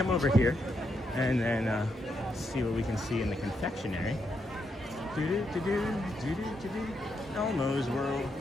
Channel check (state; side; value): normal; both; correlation 0.80